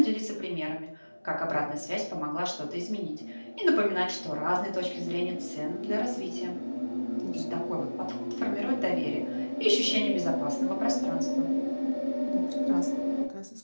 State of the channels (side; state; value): both; inverted; correlation -1.00